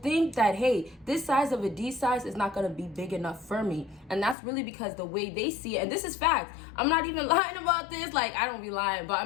that, hey, this size of a D size is not going to be big enough for me. And that's really because the way they see it, and this is fact, I'm not even lying about this, like I don't be lying, but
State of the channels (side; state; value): right; drops out; at 4.4 s